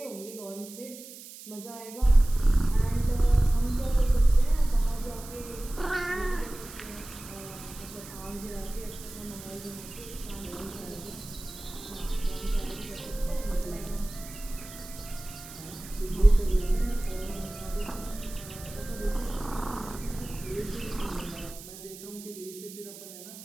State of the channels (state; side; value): noise; right; hiss, 15 dB below the sound